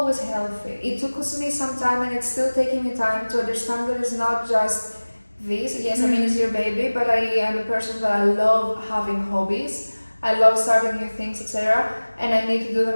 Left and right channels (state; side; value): inverted; both; correlation -1.00